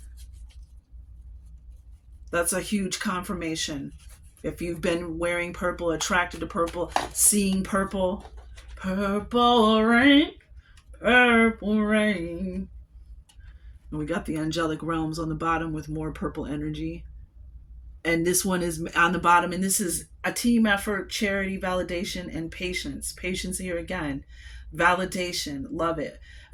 That's a huge confirmation. If you've been wearing purple, attracted to purple, seeing purple, purple rain, purple rain. And we got the angelic realms on the bottom with more purple energy. And this one is on the bottom. And this is a team effort, charity, validation, and patience. Patience here again. Validation. Love it.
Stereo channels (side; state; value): both; identical; correlation 1.00